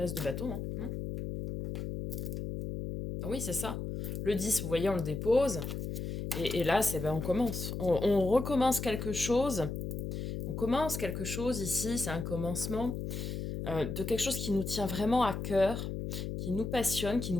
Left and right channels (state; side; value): noise; left; hum, 4 dB below the sound